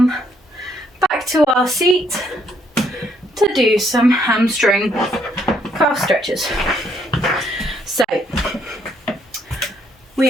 back to our seat to do some hamstring calf stretches. So,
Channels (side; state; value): both; normal; correlation 0.70